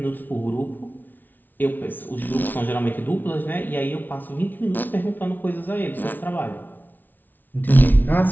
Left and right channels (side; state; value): right; late; 0.086 ms